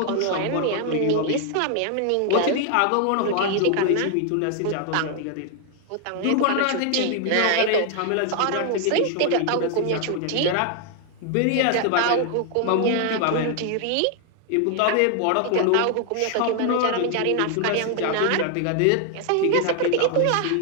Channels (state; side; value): different; both; correlation 0.00